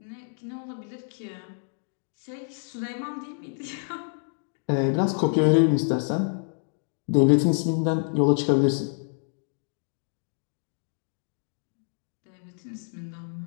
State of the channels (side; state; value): right; silent; 55 dB below the other